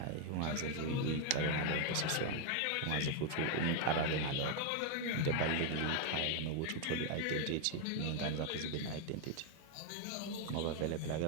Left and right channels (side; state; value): both; different; correlation 0.01